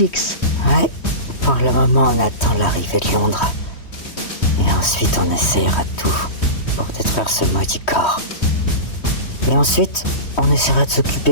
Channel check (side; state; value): right; late; 3.1 ms